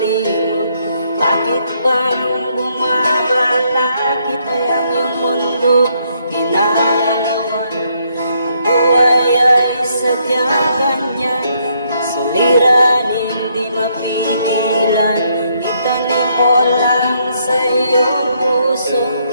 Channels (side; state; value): both; inverted; correlation -0.73